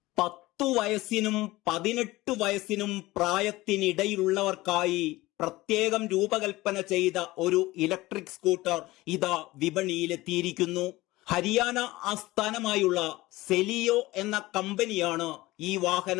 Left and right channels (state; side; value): quieter; right; 19.0 dB